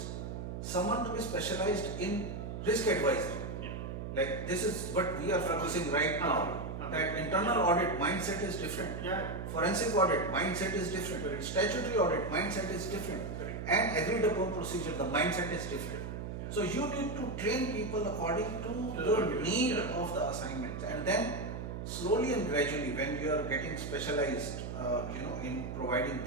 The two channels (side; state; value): right; noise; hum, 6 dB below the sound